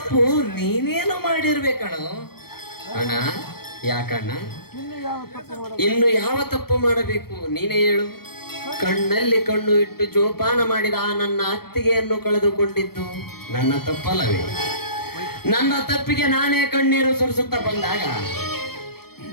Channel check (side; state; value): right; late; 0.95 ms